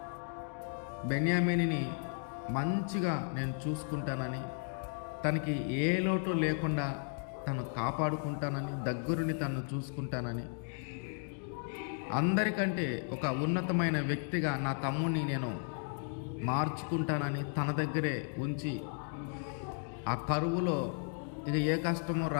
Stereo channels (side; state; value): right; silent; 55 dB below the other